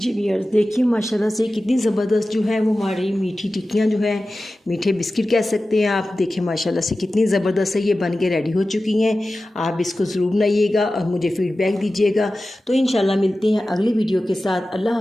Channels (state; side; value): normal; both; correlation 0.95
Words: व्यूअर्स, देखिए माशाल्लाह से कितनी ज़बरदस्त जो है वो हमारी मीठी टिक्कियाँ जो है, मीठे बिस्किट कह सकते हैं आप। देखिए माशाल्लाह से कितनी ज़बरदस्त है, ये बन के रेडी हो चुकी हैं। आप इसको ज़रूर बनाइएगा और मुझे फ़ीडबैक दीजिएगा। तो इंशाल्लाह मिलते हैं अगली वीडियो के साथ। अल्लाह